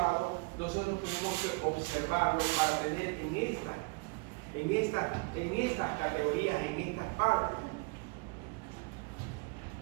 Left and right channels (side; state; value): left; quieter; 30.1 dB